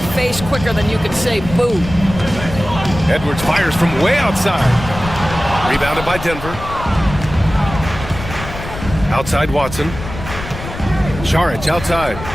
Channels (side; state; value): left; noise; rumble, 10 dB below the sound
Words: face quicker than you can say boo. Edwards fires from way outside. Rebounded by Denver. Outside Watson. Saric outside.